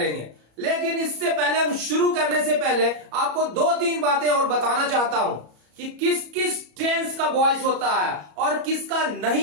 लेकिन इससे पहले, हम शुरू करने से पहले आपको दो तीन बातें और बताना चाहता हूं कि किस किस टेंस का वॉइस होता है और किसका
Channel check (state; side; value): late; left; 34 ms